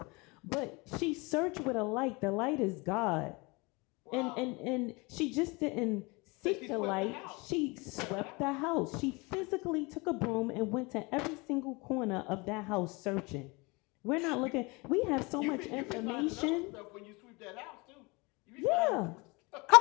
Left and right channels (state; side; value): quieter; right; 26.6 dB